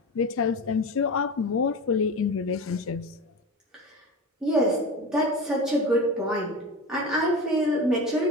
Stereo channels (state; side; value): normal; both; correlation 0.28